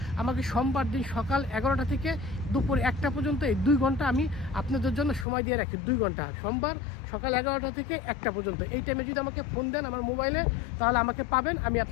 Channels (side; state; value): right; drops out; at 5.2 s